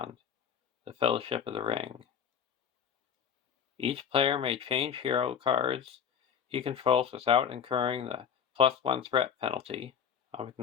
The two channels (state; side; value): quieter; right; 7.8 dB